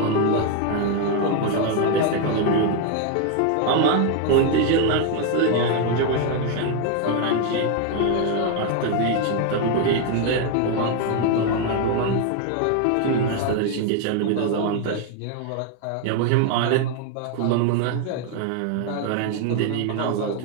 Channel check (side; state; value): both; different; correlation 0.01